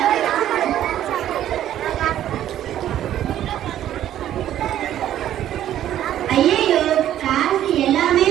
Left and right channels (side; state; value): left; quieter; 11.7 dB